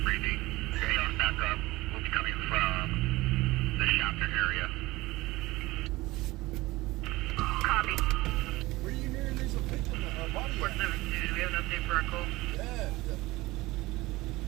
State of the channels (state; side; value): quieter; left; 19.9 dB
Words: breathing. Chaos back up. Will be coming from the Shafter area. Copy. Where are you hearing there's a victim, a body? 472, do we have an update for our call? Yeah.